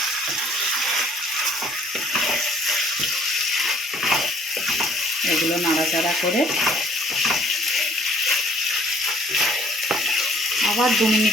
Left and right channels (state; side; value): normal; both; correlation 0.59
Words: এগুলো নাড়াচাড়া করে আবার 2